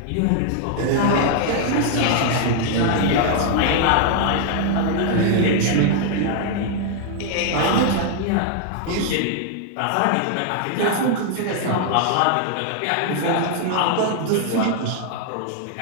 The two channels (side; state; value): both; different; correlation 0.00